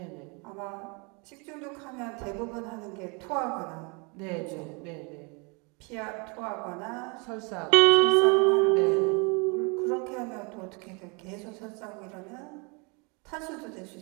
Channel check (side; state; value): left; quieter; 31.8 dB